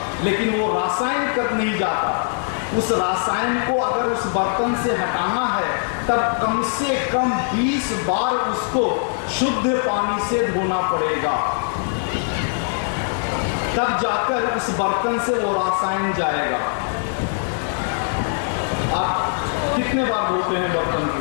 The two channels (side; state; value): right; silent; digital silence